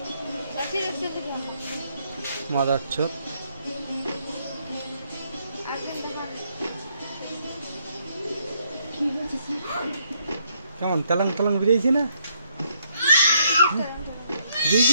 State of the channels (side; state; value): both; inverted; correlation -0.72